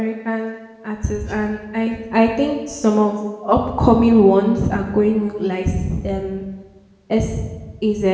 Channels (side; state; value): both; identical; correlation 1.00